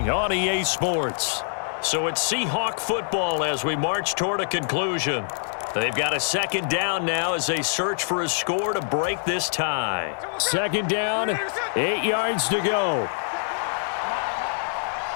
on EA Sports. So it's Seahawk football as we march toward a conclusion. They've got a second down now as they search for a score to break this tie. Second down, 8 yards to go.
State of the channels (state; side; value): silent; right; digital silence